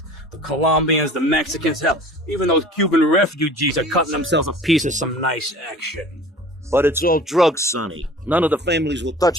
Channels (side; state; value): both; normal; correlation 0.44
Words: The Colombians, the Mexicans, hell, even those Cuban refugees are cutting themselves a piece of some nice action. But it's all drugs, Sonny. None of the families will